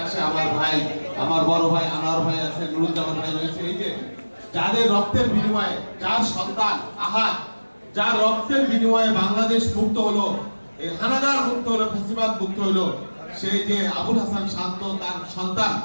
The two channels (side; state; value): both; inverted; correlation -1.00